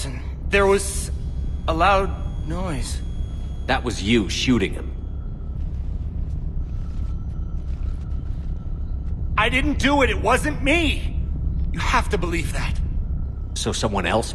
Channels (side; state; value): both; identical; correlation 1.00